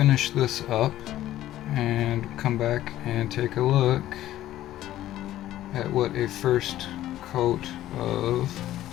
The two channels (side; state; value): right; quieter; 13.7 dB